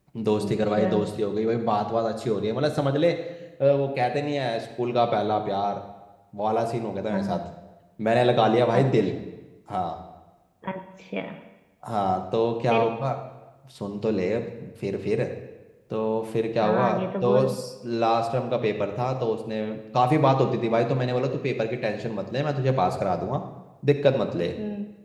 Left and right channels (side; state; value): both; identical; correlation 1.00